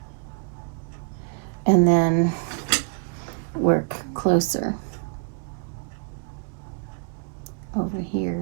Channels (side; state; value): left; quieter; 36.5 dB